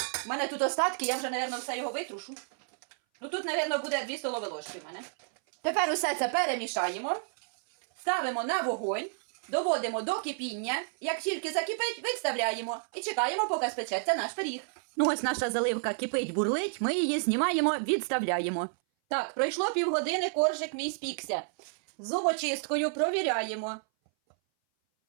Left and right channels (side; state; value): left; silent; 57 dB below the other